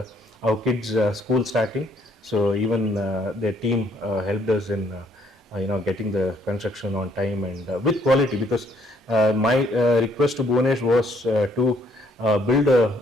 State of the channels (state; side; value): normal; both; correlation 0.67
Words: our kids school starting, so even their team helped us in getting the construction on time and with quality, because my request to Bhuvanesh was to build